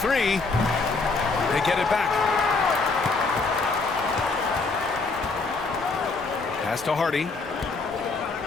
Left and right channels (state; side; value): quieter; right; 4.0 dB